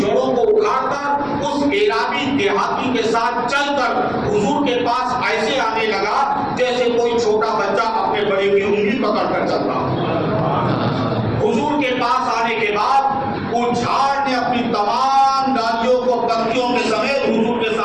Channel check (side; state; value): right; noise; rumble, 25 dB below the sound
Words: کو اکھاڑ کر اس عرابی دیہاتی کے ساتھ چل کر حضور کے پاس ایسے آنے لگا جیسے کوئی چھوٹا بچہ اپنے بڑے کی انگلی پکڑ کر چلتا۔ حضور کے پاس آنے کے بعد وہ جھاڑ نے اپنی تمام ڈالیوں کو پتیوں کے سمیت حضور کے